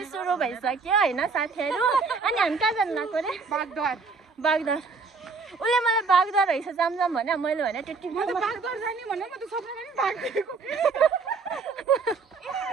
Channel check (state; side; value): quieter; left; 4.5 dB